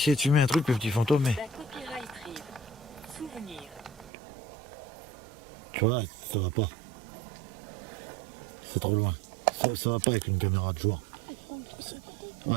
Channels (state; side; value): drops out; left; at 4.1 s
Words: de filmer un truc, le petit fantôme, mais... Da copyright rive. Souvenir. Tu vois, ça va pas. C'est trop loin. Ça va pas avec une caméra de jour.